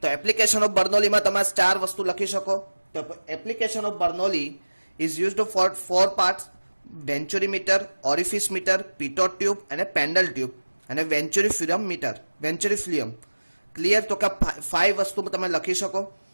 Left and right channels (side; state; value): both; inverted; correlation -1.00